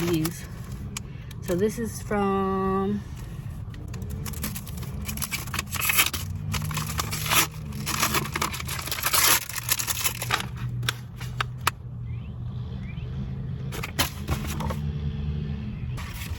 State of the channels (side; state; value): both; identical; correlation 1.00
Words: these. So this is from